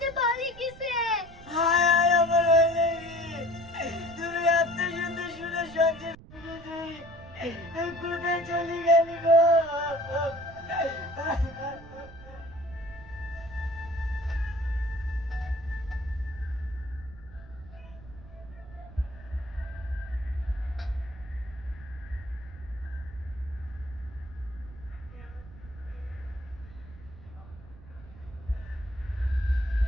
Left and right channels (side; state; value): right; noise; rumble, 18 dB below the sound